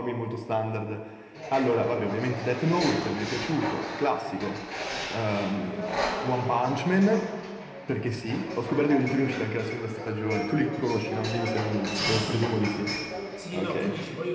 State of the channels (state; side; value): identical; both; correlation 1.00